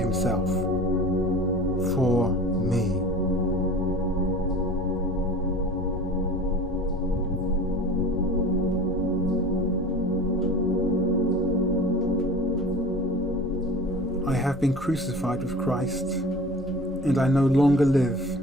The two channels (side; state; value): both; normal; correlation 0.39